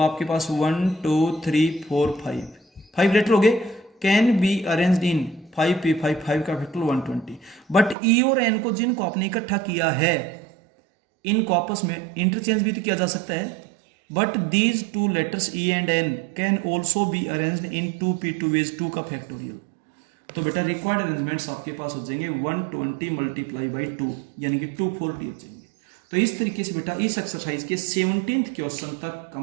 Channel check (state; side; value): drops out; left; at 8.0 s